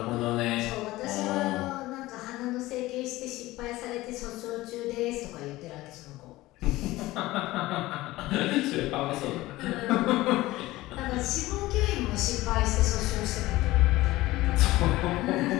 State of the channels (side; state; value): right; quieter; 18.1 dB